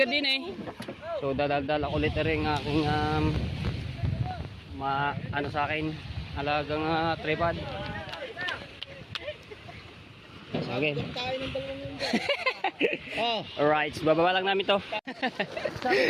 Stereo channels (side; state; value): both; identical; correlation 1.00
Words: din eh. So dadal ulit rin aking ano sa akin, alagang tripod. Okay. Alright, so bababa lang namin to.